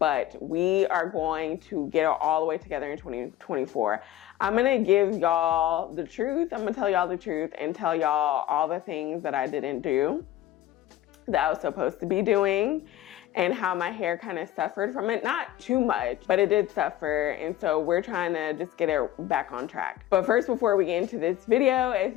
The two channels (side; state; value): right; quieter; 13.4 dB